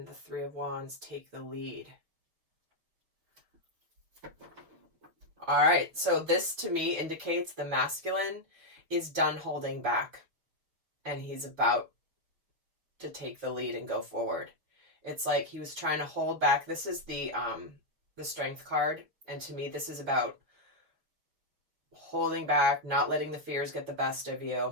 the 3 of Wands, take the lead. All right, so this to me indicates the masculine is done holding back and he's about to take the lead and go forward. It's like he was trying to hold back. This is the Strength card, and to me this is about holding back, not letting the fears get the best of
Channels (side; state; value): left; late; 5.7 ms